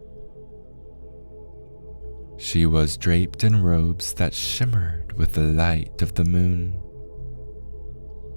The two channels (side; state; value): both; inverted; correlation -1.00